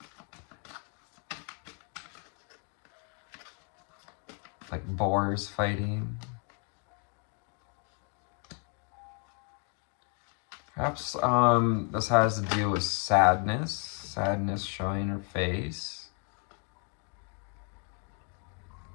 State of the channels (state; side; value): quieter; right; 39.6 dB